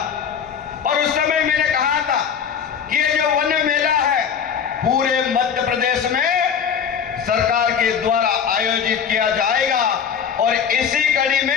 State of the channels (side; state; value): right; quieter; 7.3 dB